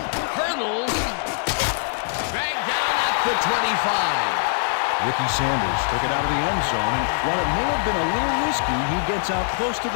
Hurdles. Dragged down at the 25. Ricky Sanders took it out of the end zone, and while it may have been a little risky, he gets out close to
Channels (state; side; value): silent; right; 64 dB below the other